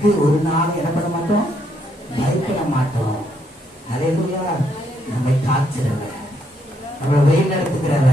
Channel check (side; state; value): both; normal; correlation 0.74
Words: ஒரு நாள் என்ன பண்ண மாட்டோம்? பயப்பட மாட்டோம். அல்லேலூயா. நம்மை காக்கிறவர், நம்மளை வழி